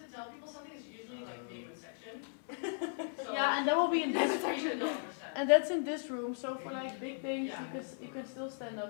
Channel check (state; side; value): silent; right; 53 dB below the other